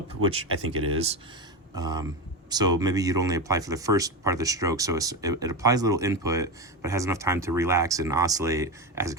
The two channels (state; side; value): normal; both; correlation 0.17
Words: which I think it is. So maybe you'd only apply for the first part of the stroke, so it applies a little input, but has enough time to relax and oscillate as it